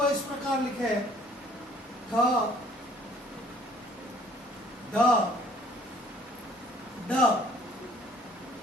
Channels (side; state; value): both; normal; correlation 0.56